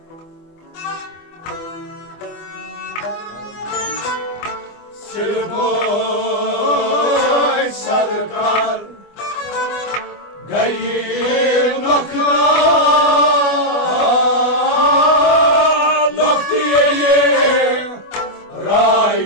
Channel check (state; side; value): late; right; 24 ms